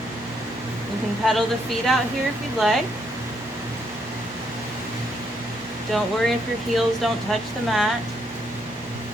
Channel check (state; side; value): normal; both; correlation 0.74